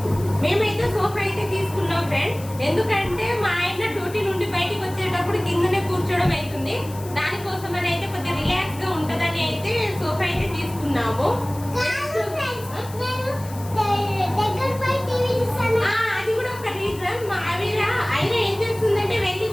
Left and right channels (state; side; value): noise; left; hiss, 18 dB below the sound